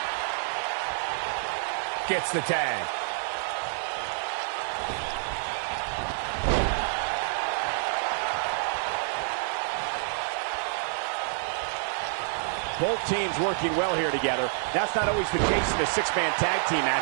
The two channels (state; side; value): silent; left; 58 dB below the other